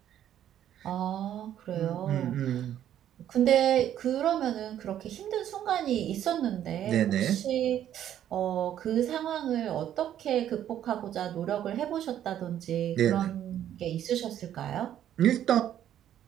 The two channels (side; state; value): left; quieter; 10.9 dB